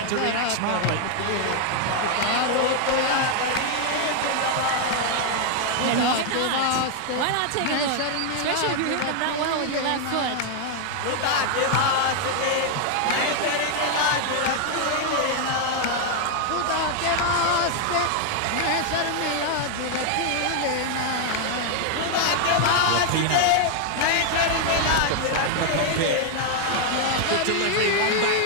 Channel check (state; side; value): different; both; correlation 0.00